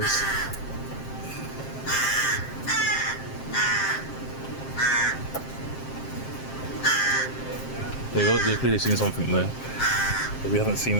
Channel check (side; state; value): right; late; 7.6 ms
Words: They've clearly seen something there that we haven't